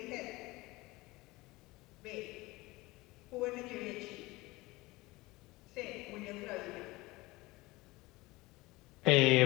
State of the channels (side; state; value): right; quieter; 21.2 dB